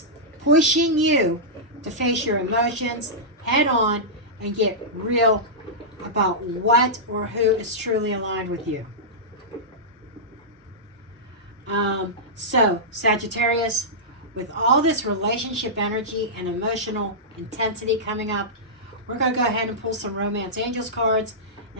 pushing you to face your emotions head on and get real about what or who is truly aligned with you. So, Sagittarius, with all this relationship energy and emotional intensity coming up, we're going to go ahead and pull some Romance Angels cards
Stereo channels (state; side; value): normal; both; correlation -0.14